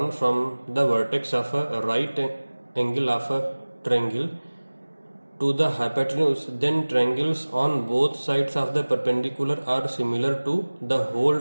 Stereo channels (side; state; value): both; inverted; correlation -1.00